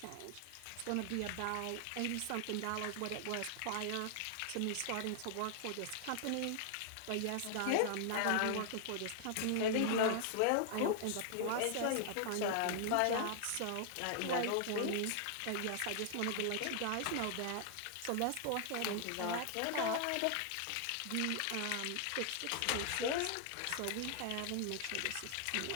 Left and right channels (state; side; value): different; both; correlation 0.00